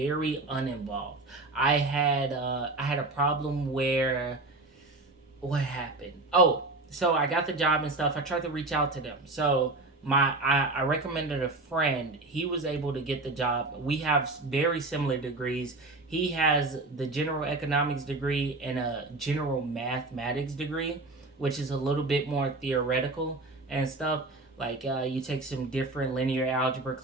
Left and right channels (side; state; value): left; quieter; 3.1 dB